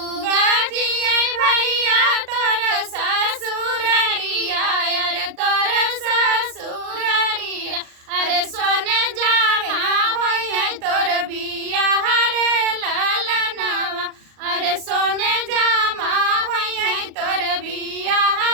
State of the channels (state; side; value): late; left; 38 ms